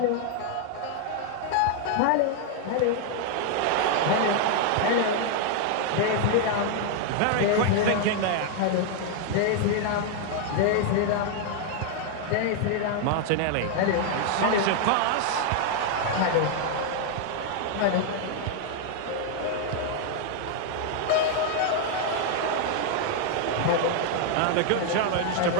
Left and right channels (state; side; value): different; both; correlation 0.00